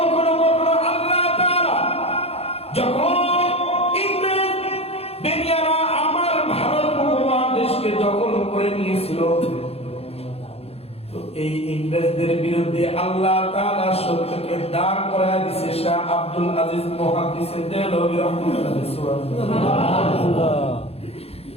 কখনো আল্লাহ তাআলা যখন দখল করে নিয়েছিল, তো এই ইংরেজদের বিরুদ্ধে আল্লাহ তাআলা সত্যকে দাঁড় করায় দিয়েছে। শাহ আব্দুল আজিজ মুহাদ্দিসে দেহলভী রাহমাতুল্লাহ সুবহানাল্লাহ।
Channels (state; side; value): late; right; 0.29 ms